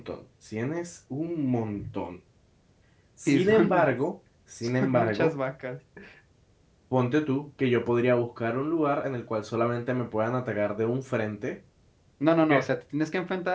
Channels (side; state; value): both; identical; correlation 1.00